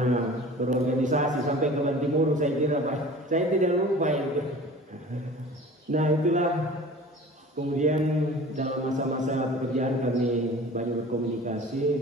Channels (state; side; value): normal; both; correlation 0.42